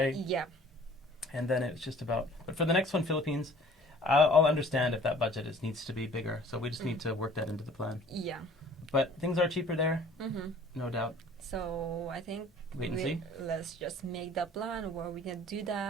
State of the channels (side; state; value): both; normal; correlation 0.51